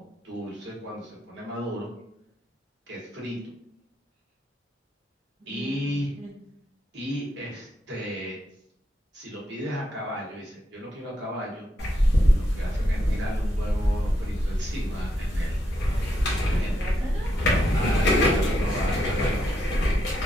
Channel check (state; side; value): normal; both; correlation 0.80